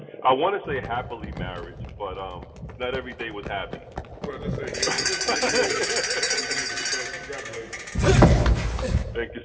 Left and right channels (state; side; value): identical; both; correlation 1.00